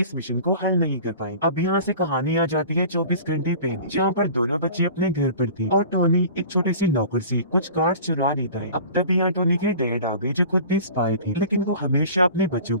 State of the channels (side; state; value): both; inverted; correlation -0.41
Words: मिशन को हल नहीं कर पाए। अब यहाँ से कहानी आ जाती है 24 घंटे पहले, जहाँ पर दोनों बच्चे अपने घर पर थे और टोनी एक छोटे से लॉकर से कुछ कार्ड चुरा लेता है। अब तभी यहाँ टोनी के डैड आ गए जो खुद भी स्पाई थे, लेकिन वो हमेशा अपने बच्चों